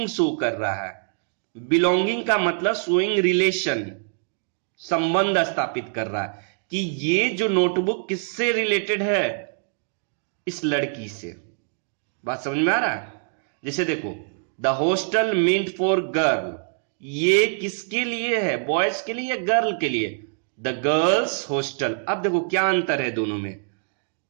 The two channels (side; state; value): left; silent; digital silence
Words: शो कर रहा है. बिलोंगिंग का मतलब शोइंग रिलेशन, संबंध स्थापित कर रहा है कि ये जो नोटबुक किससे रिलेटेड है? इस लड़की से. बात समझ में आ रहा है? जैसे देखो, the hostel meant for girl, ये किसके लिए है? बॉयज के लिए या गर्ल के लिए? The girls hostel. अब देखो क्या अंतर है दोनों में।